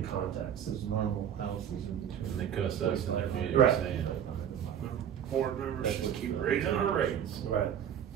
context. There's normal houses in between. And they cuss us in their meeting Right. saying, board members just keep raising our rates. Right.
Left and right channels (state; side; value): quieter; left; 9.2 dB